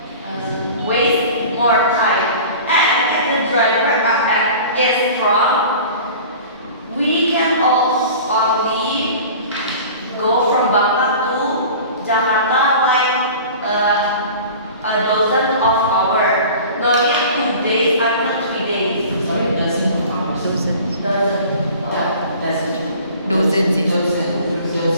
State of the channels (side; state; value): both; inverted; correlation -0.41